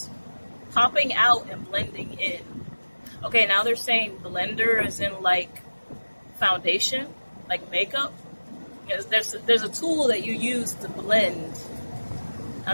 Popping out and blending in. Okay, now they're saying blender is in like foundation, like makeup. Because there's a tool that you use to blend. I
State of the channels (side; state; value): both; inverted; correlation -1.00